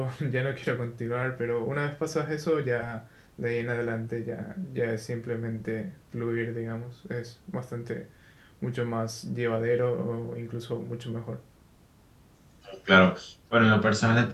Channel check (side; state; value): both; identical; correlation 1.00